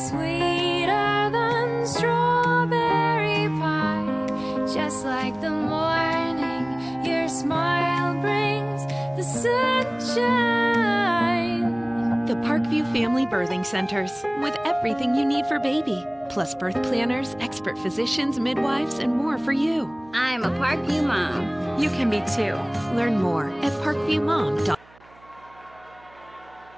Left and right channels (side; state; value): right; noise; hum, 28 dB below the sound